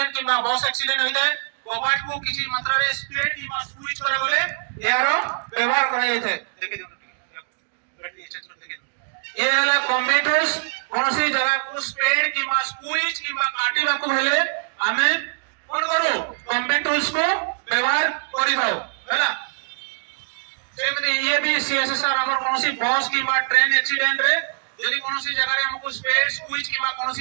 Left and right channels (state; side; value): silent; left; digital silence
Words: किबा बस एक्सीडेंट होई जाय कबाट को किछि मात्रा रे स्पीड किबा स्विच करा गले यारो व्यवहार करा जाय देखि ए हला कम्प्यूटर्स कोनोसी जगह को स्पीड किबा स्विच किबा काटिबा को हेले हमें कोन करू कम्प्यूटर्स को व्यवहार करि दाओ हैला सेमति ये भी सीएसआर हमर कोनोसी बस किबा ट्रेन एक्सीडेंट रे यदि कोनोसी जगह रे हमको स्पेस स्विच किबा